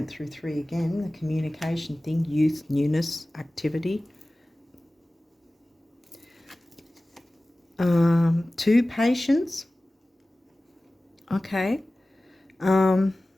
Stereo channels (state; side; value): normal; both; correlation 0.97